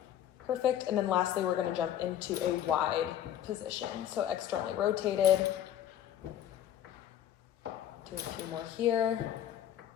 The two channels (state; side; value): quieter; right; 10.8 dB